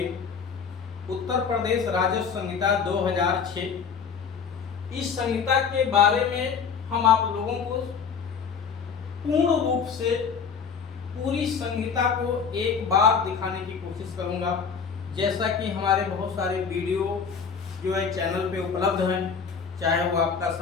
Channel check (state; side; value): quieter; right; 6.2 dB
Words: उत्तर प्रदेश राजस्व संहिता 2006। इस संहिता के बारे में हम आप लोगों को पूर्ण रूप से पूरी संहिता को एक बार दिखाने की कोशिश करूंगा। जैसा कि हमारे बहुत सारे वीडियो जो है चैनल पे उपलब्ध हैं, चाहे वो आपका